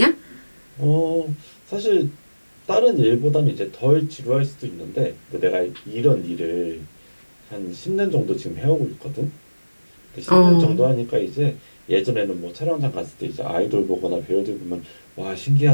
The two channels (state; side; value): inverted; both; correlation -1.00